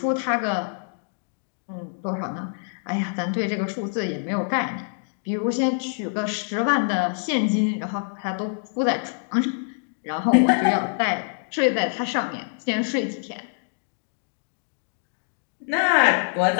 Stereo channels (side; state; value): right; silent; digital silence